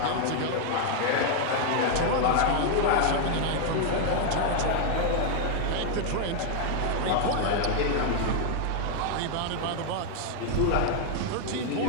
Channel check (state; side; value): different; both; correlation 0.00